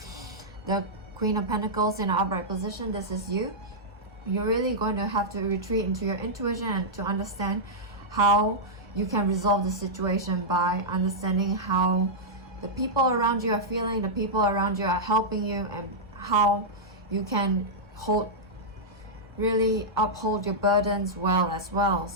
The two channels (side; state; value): both; normal; correlation -0.10